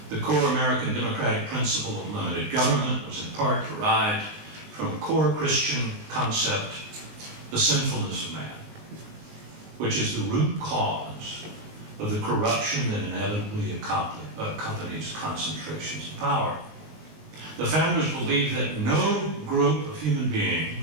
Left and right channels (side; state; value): left; late; 19 ms